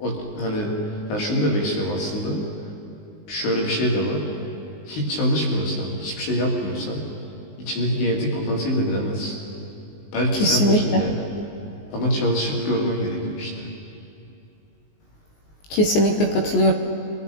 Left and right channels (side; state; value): right; late; 19 ms